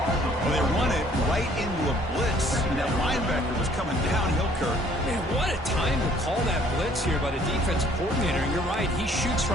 Well, they run it right into a blitz, and that linebacker was coming downhill, Kirk. Man, what a time to call that blitz here by the defense coordinator. And you're right, he shoots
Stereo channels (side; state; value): both; normal; correlation 0.59